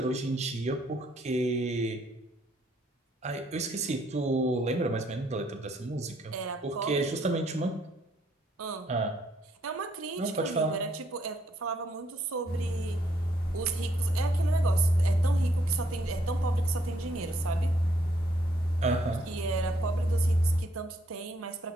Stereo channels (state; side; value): normal; both; correlation 0.70